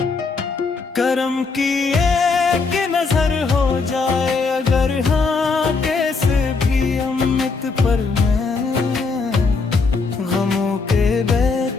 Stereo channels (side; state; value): right; quieter; 4.3 dB